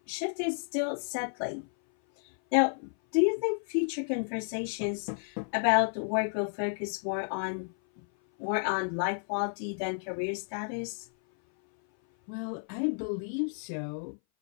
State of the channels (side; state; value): right; silent; 57 dB below the other